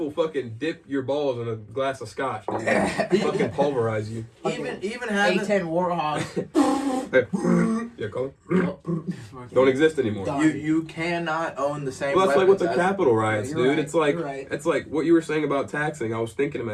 fucking dip your balls in a glass of scotch, dude. Fucking pulverize you. Even having... A10 Warhawk. Yeah, call it. Don't exist anymore. Done. You cannot own the same Well, that's like with weapons the as- Capitol riots, You're dude. right, It's like you're right. it's like what you were saying about taxing. I was thinking in my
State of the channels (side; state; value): both; identical; correlation 1.00